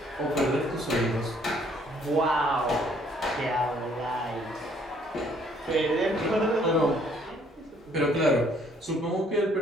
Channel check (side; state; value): both; normal; correlation 0.63